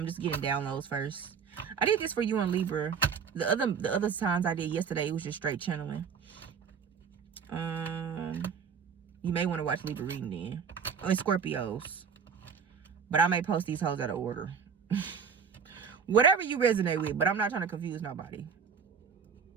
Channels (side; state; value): left; quieter; 6.4 dB